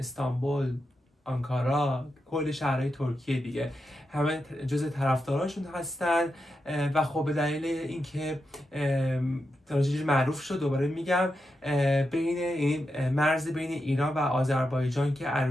آنکارا، کل شهرهای ترکیه دیگه همه جز طرفداراشون هستن و خب به دلیل اینکه تراژدی معروف شد دوباره میگم بین این مرز بین ایران و آذربایجان که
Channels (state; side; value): normal; both; correlation 0.87